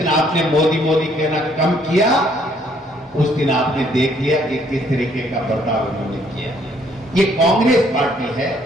आपने मोदी मोदी कहना कम किया उस दिन आपने देख लिया कि किस तरीके का बर्ताव उन्होंने किया। ये कांग्रेस पार्टी है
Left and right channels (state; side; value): normal; both; correlation 0.65